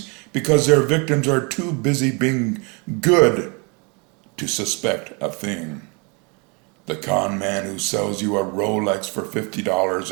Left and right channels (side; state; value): left; quieter; 32.0 dB